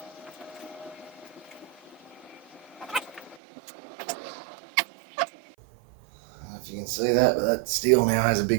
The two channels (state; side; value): drops out; left; at 3.4 s